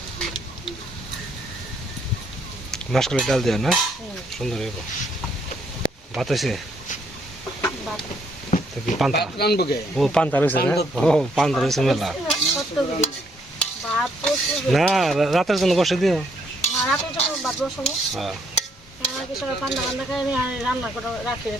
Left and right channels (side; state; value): both; normal; correlation 0.70